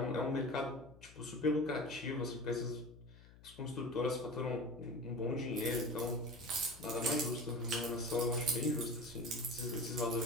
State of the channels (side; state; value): left; noise; hum, 21 dB below the sound